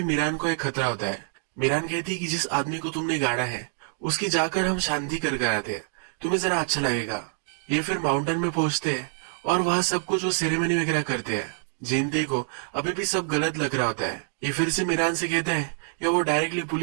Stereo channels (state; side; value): silent; left; digital silence